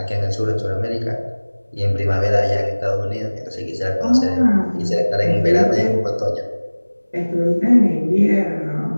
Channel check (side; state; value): both; inverted; correlation -1.00